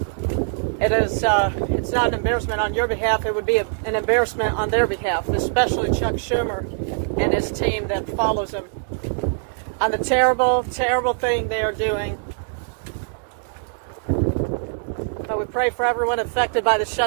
It's not an embarrassment on your behalf. It would be an embarrassment on their behalf, especially Chuck Schumer and his team that follows him on the terrible, terrible thing they are doing. But we pray for everyone affected by the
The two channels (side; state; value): left; silent; digital silence